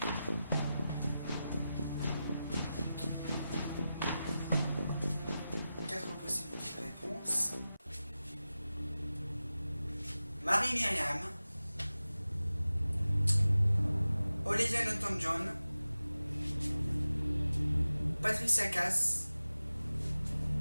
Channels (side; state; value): both; inverted; correlation -0.94